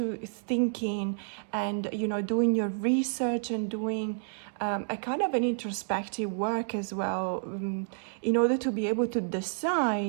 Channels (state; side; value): silent; left; digital silence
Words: thinking and doing your research and doing a kind of an introspective work as well, in order to be able to